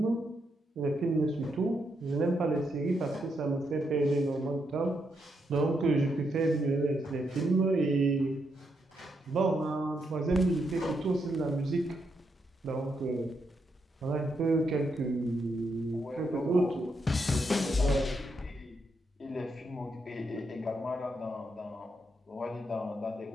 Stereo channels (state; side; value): normal; both; correlation 0.80